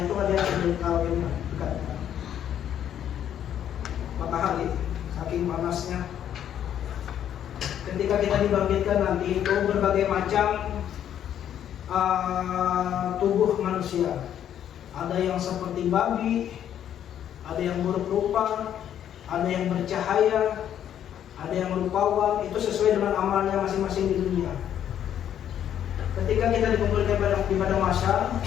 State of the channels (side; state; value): right; quieter; 10.1 dB